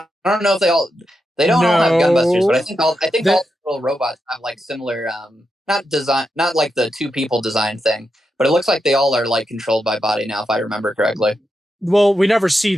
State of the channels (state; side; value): normal; both; correlation 0.86